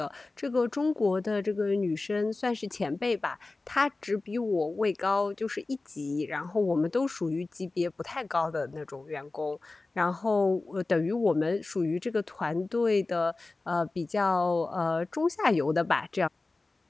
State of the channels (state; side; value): quieter; right; 3.4 dB